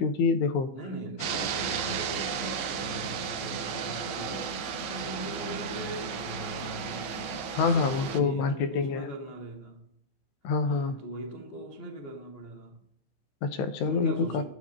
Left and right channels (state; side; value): late; right; 14 ms